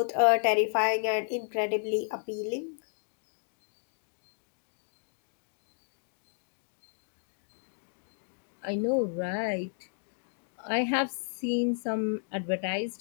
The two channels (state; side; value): silent; right; digital silence